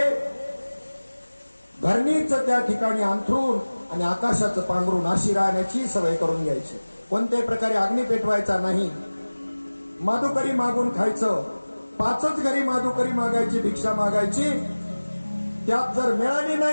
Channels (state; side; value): inverted; both; correlation -1.00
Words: धरणीचं त्या ठिकाणी अंथरून आणि आकाशाचं पांघरून अशी राहण्याची सवय करून घ्यायची. कोणत्याही प्रकारे अग्नी पेटवायचा नाही. माधुकरी मागून खायचं. 5च घरी माधुकरी मागायची, भिक्षा मागायची. त्यात जर मिळाली